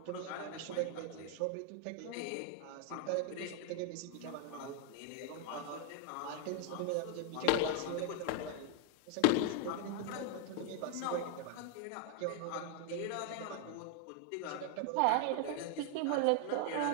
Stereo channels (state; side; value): different; both; correlation 0.00